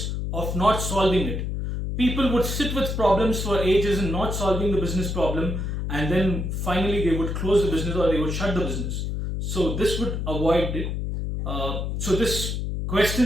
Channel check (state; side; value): noise; left; hum, 2 dB below the sound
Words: of not solving it. People would sit with problems for ages and not solving the business problem, and then finally they would close the business or they would shut the business. So this would avoid it. This